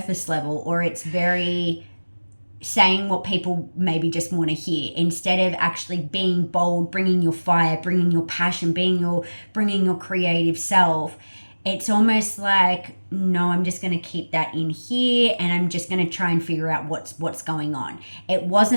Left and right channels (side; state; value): both; inverted; correlation -1.00